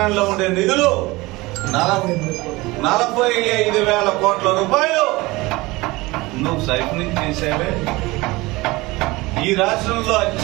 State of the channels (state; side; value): quieter; left; 21.6 dB